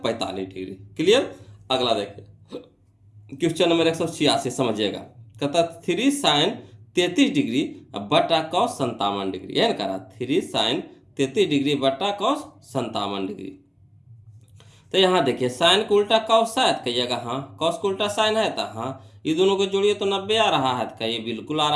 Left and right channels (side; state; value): both; identical; correlation 1.00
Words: 45 डिग्री। क्लियर। अगला देखिए क्वेश्चन नंबर 186, समझिएगा। कहता 3 साइन 33 डिग्री बटा कॉस 57 डिग्री, है ना, कह रहा 3 साइन 33 डिग्री बटा कॉस 57 डिग्री। तो यहाँ देखिए साइन को उल्टा कॉस शायद कहिएगा, हाँ, कॉस को उल्टा साइन है तो हाँ, ये दोनों को जोड़िए तो 90 आ रहा है, तो ये बिल्कुल आ